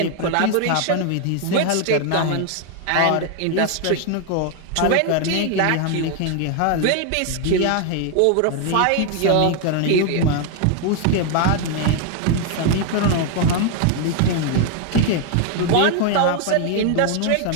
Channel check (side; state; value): both; different; correlation 0.00